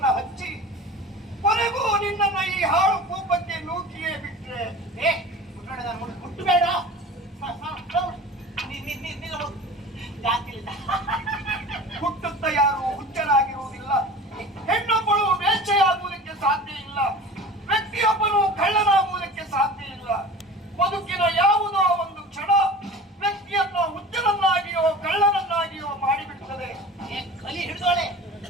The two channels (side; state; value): both; normal; correlation 0.38